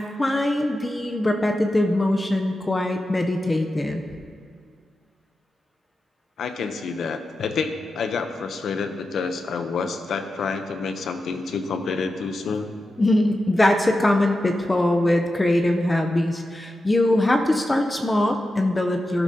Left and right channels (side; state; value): both; normal; correlation 0.90